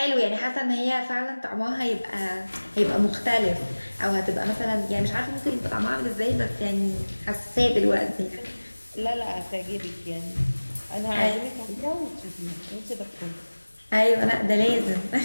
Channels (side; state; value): both; inverted; correlation -1.00